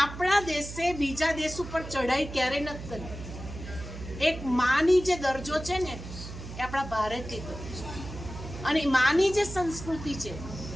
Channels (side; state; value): right; noise; hum, 11 dB below the sound